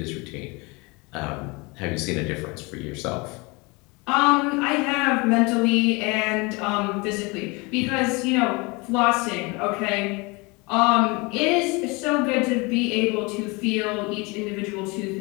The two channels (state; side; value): quieter; right; 26.9 dB